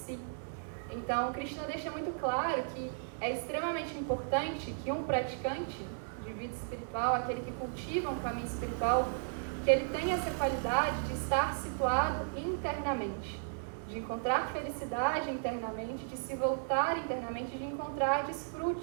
Então Krishna deixa muito claro que é extremamente importante que um praticante de vida espiritual, aquele que cultiva um caminho espiritual, que ele tenha essa qualidade de estar situado internamente, de encontrar felicidade internamente, de se voltar internamente, de encontrar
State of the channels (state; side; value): silent; left; digital silence